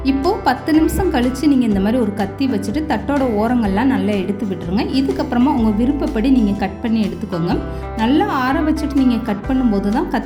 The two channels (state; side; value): identical; both; correlation 1.00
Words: இப்போது 10 நிமிஷம் கழித்து நீங்கள் இந்த மாதிரி ஒரு கத்தி வச்சுட்டு தட்டோட ஓரங்கள்லாம் நல்லா எடுத்து விட்டுருங்க. இதுக்கப்புறமா உங்கள் விருப்பப்படி நீங்கள் கட் பண்ணி எடுத்துக்கோங்க. நல்லா ஆற வச்சுட்டு நீங்கள் கட் பண்ணும்போது தான்